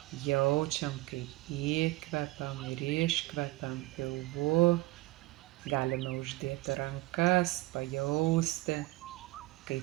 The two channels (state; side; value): quieter; left; 19.7 dB